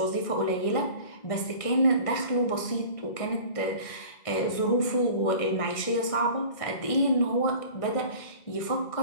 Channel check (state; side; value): late; right; 1.6 ms